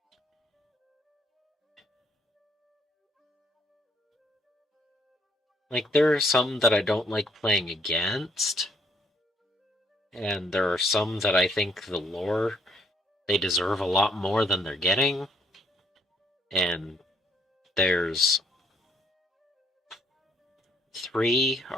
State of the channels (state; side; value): normal; both; correlation 0.67